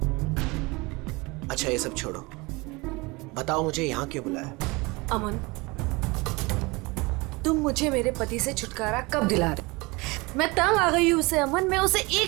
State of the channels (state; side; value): quieter; left; 24.9 dB